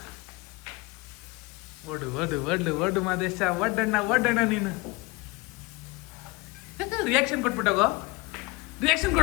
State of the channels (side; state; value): right; quieter; 23.7 dB